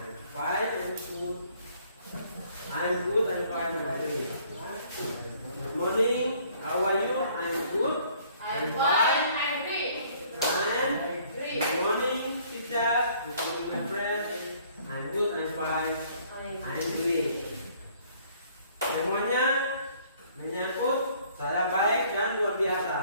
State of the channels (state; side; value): inverted; both; correlation -0.60